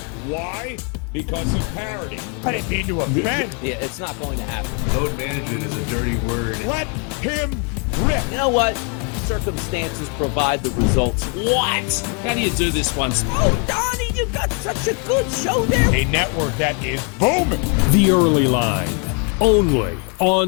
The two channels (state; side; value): quieter; right; 35.4 dB